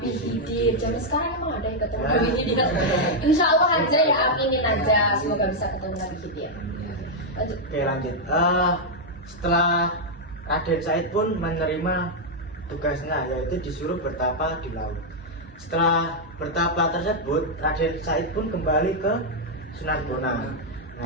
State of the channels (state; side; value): normal; both; correlation -0.02